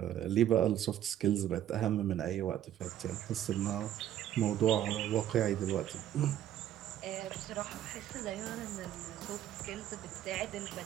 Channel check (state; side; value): quieter; left; 11.6 dB